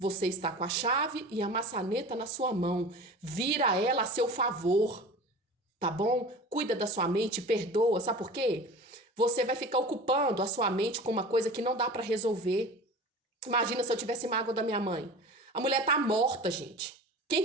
está com a chave e a maçaneta na sua mão. Vira ela a seu favor, tá bom? Cuida da sua mente, perdoa. Sabe por quê? Você vai ficar ocupando a sua mente com uma coisa que não dá para resolver. Imagina se eu tivesse mágoa da minha mãe. A mulher tá morta, gente. Quem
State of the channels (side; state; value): both; normal; correlation 0.37